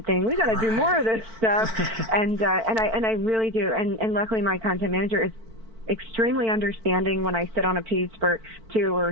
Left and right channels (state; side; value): late; left; 4.5 ms